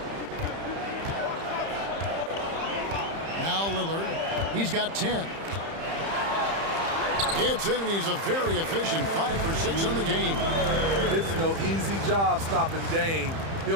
Now Lillard. He's got 10. It's in, and he's a very efficient 5 for 6 on the game. It's no easy job stopping Dame.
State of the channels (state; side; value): late; left; 30 ms